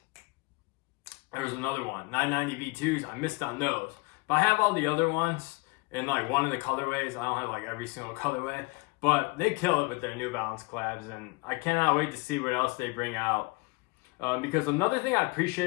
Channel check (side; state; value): right; quieter; 27.1 dB